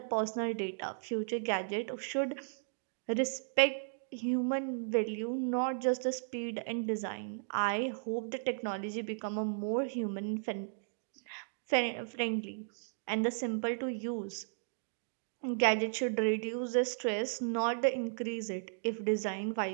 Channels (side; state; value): left; silent; digital silence